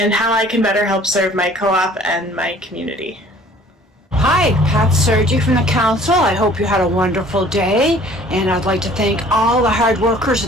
how I can better help serve my co-op and my community. Hi, Pat Sergi from the council. I hope you had a wonderful day, and I'd like to thank all the hard workers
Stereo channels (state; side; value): normal; both; correlation 0.53